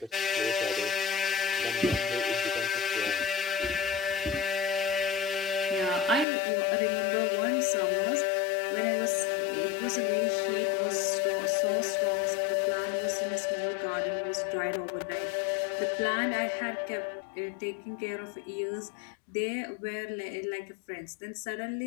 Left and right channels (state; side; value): drops out; right; at 6.2 s